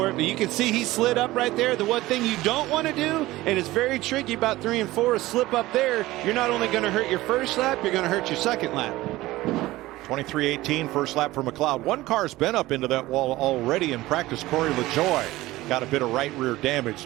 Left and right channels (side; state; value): left; quieter; 17.8 dB